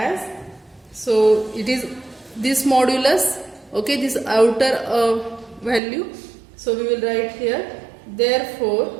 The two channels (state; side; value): drops out; left; at 5.8 s